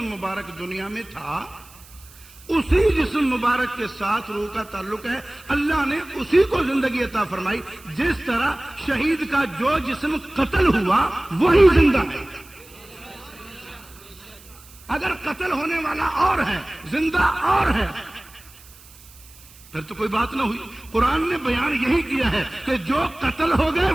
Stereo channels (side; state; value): right; noise; hiss, 23 dB below the sound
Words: مبارک دنیا میں تھا اسی جسم مبارک کے ساتھ روح کا تعلق ہے. اللہ نے اسی کو زندگی عطا فرمائی. جس طرح شہید کا جو جسم قتل ہوا وہی زندہ ہے. اگر قتل ہونے والا اور ہے، زندہ اور ہے، پھر تو کوئی بات نہ ہوئی. قرآن نے بیان یہی کیا ہے کہ جو قتل ہو گئے